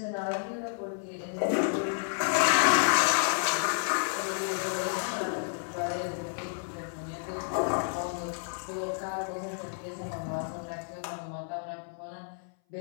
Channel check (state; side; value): silent; right; 57 dB below the other